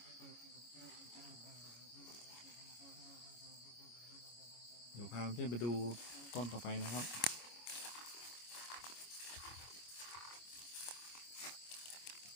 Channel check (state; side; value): late; right; 25 ms